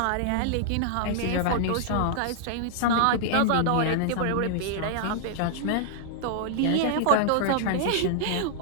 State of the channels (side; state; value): both; different; correlation -0.01